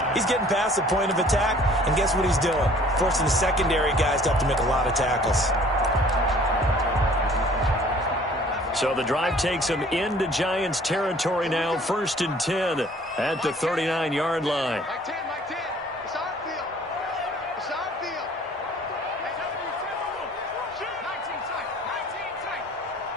he's getting past the point of attack, and guess what he's doing? Forcing the secondary guys to have to make a lot of tackles. So the drive takes him into Giants territory now. 1st and 10 at the 39-yard line.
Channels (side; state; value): both; normal; correlation 0.53